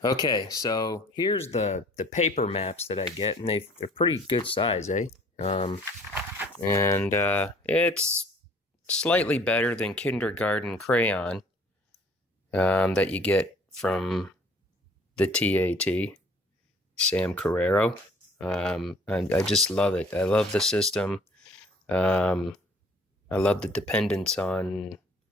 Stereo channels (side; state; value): both; normal; correlation 0.54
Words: Okay, so here's the paper maps that I get, and they're pretty good size, eh? And it's slightly better than kindergarten crayon that you get from the TAT, Sam Carrero. And I just love it. I love the system. Um, I love the dependence on